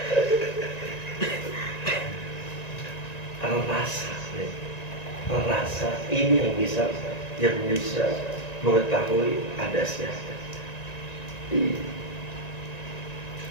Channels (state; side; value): late; right; 1.9 ms